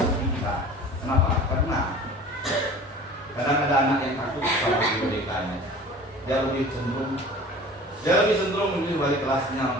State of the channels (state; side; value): normal; both; correlation 0.42